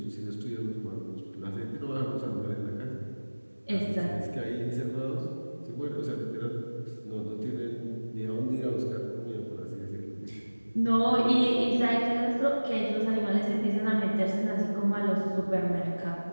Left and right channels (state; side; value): inverted; both; correlation -1.00